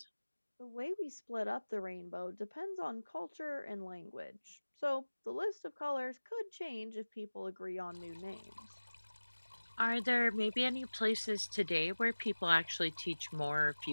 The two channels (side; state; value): both; inverted; correlation -1.00